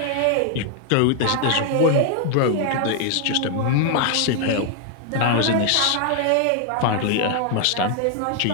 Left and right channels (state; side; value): different; both; correlation 0.00